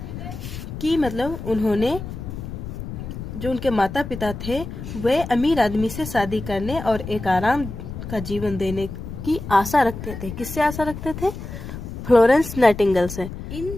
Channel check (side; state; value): left; noise; rumble, 9 dB below the sound